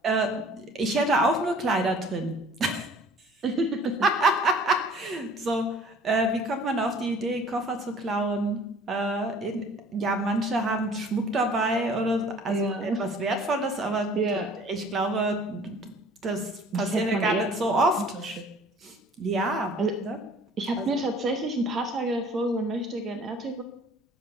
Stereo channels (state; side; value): normal; both; correlation 0.51